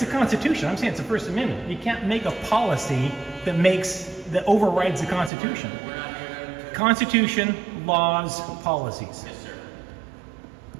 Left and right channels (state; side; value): drops out; left; at 5.3 s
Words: Constitution. I'm saying it's the First Amendment. You can't make a policy that overrides the Constitution. We're not here to... Constitution, laws, policies. Yes, sir.